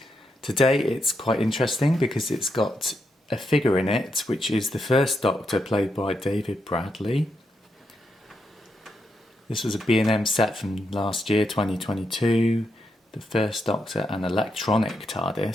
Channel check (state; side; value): normal; both; correlation 0.82